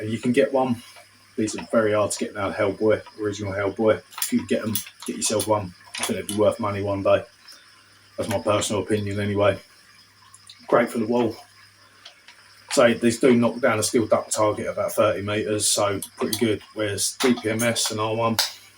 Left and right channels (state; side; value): identical; both; correlation 1.00